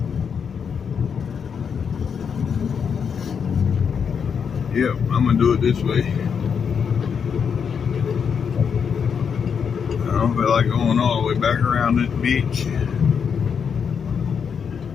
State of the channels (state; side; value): quieter; right; 6.8 dB